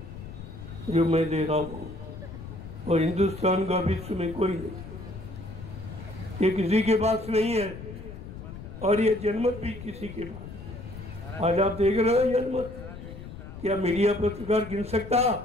जो मैं दे रहा हूँ, और हिंदुस्तान का विश्व में कोई नहीं, ये किसी के पास नहीं है, और ये जनमत भी किसी के पास। आज आप देख रहे हो जनमत, क्या मीडिया पत्रकार गिन सकता?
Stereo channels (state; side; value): noise; left; rumble, 12 dB below the sound